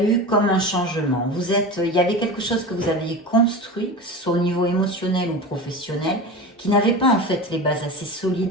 comme un changement. Il y avait quelque chose que vous aviez construit, que ce soit au niveau émotionnel ou professionnel, qui n'avait pas en fait les bases assez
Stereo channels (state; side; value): normal; both; correlation 0.29